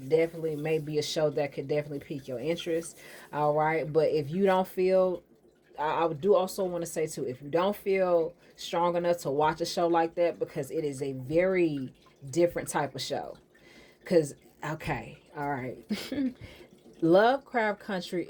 definitely may be a show that could definitely pique your interest. All right, but if you don't feel, I do also want to say too, if you don't feel strong enough to watch a show like that, because it is a very different type of show. Because okay, all right. Lovecraft Country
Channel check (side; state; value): both; identical; correlation 1.00